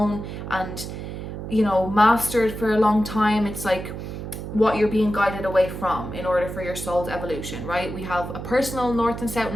and mastered for a long time. It's like what you're being guided away from in order for your soul's evolution, right? We have a personal North and South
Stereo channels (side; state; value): right; noise; hum, 8 dB below the sound